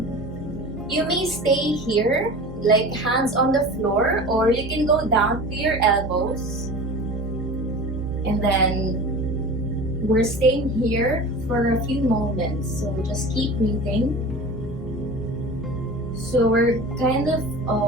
You may stay here, like hands on the floor, or you can go down to your elbows. And then we're staying here for a few moments, so just keep breathing. So we're kind of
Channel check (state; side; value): normal; both; correlation 0.36